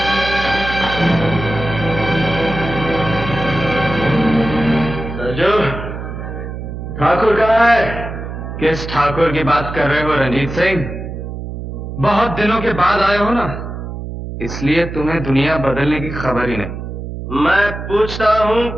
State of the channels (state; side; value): noise; right; hum, 8 dB below the sound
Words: सरजू, ठाकुर कहाँ है? किस ठाकुर की बात कर रहे हो रंजीत सिंह? बहुत दिनों के बाद आए हो ना, इसलिए तुम्हें दुनिया बदलने की खबर ही नहीं। मैं पूछता हूँ